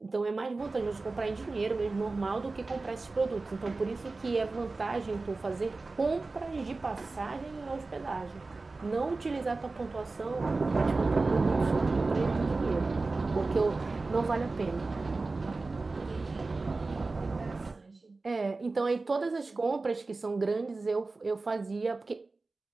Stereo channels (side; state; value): left; quieter; 3.6 dB